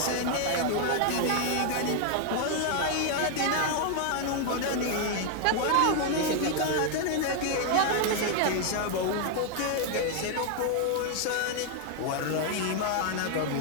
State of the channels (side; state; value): both; different; correlation 0.00